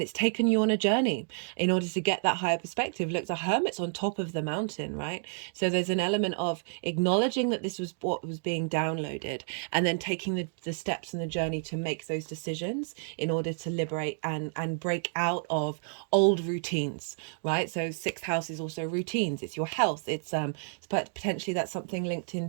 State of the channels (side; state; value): left; silent; 56 dB below the other